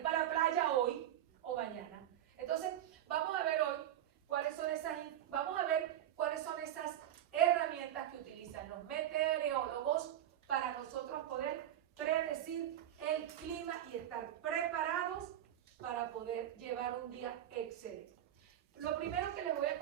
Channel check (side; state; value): left; quieter; 11.7 dB